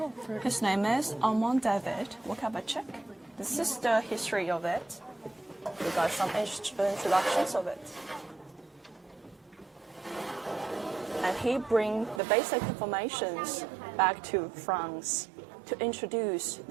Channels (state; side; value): drops out; left; at 12.2 s